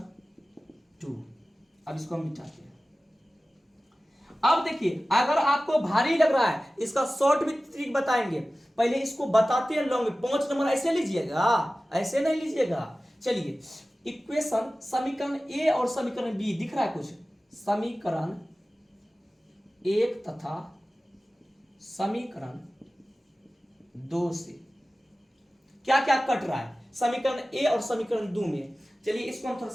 2। अब इसको हम मिटाते हैं। अब देखिए अगर आपको भारी लग रहा है, इसका शॉर्ट में ट्रिक बताएंगे, पहले इसको बताते हैं लॉन्ग में। 5 नंबर ऐसे लीजिएगा, ऐसे नहीं लीजिएगा। चलिए इक्वेशन, समीकरण ए और समीकरण बी दिख रहा है कुछ, समीकरण 1 तथा समीकरण 2 से क्या क्या कट रहा है समीकरण ए और समीकरण 2 में। चलिए इसको हम थोड़ा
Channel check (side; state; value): both; normal; correlation 0.96